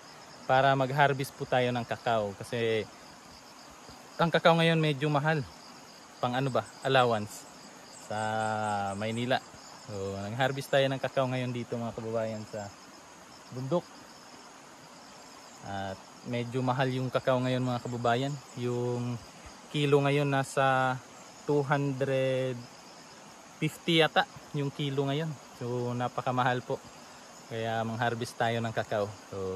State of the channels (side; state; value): both; identical; correlation 1.00